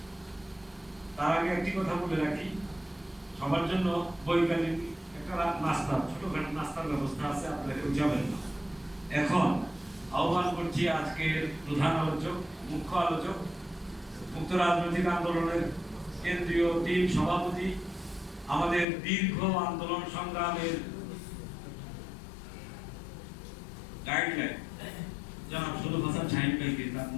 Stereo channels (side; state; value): right; drops out; at 18.9 s